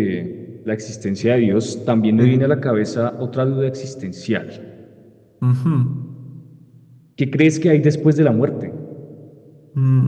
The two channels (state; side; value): identical; both; correlation 1.00